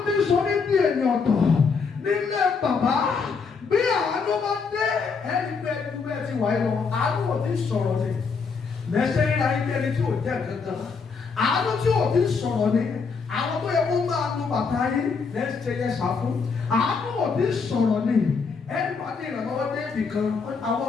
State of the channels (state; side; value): quieter; right; 5.2 dB